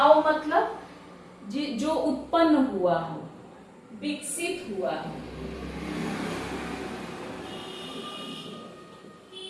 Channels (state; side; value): identical; both; correlation 1.00